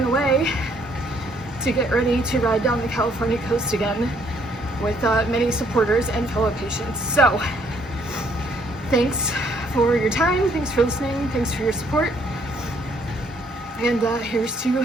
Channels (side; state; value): both; normal; correlation 0.67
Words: away to get ready to ride down the California coast again with many supporters and fellow patients. So thanks for your time, thanks for listening, thanks for your support, and here's to